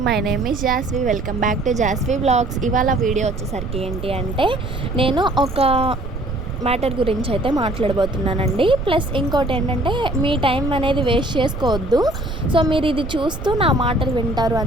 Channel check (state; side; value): noise; right; rumble, 8 dB below the sound